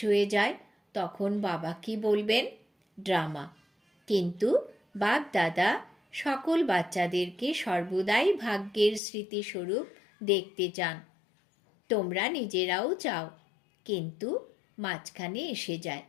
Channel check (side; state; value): right; drops out; at 9.0 s